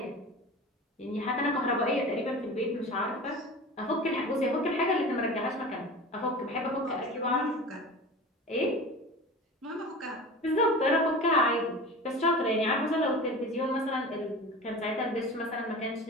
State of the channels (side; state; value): both; normal; correlation 0.34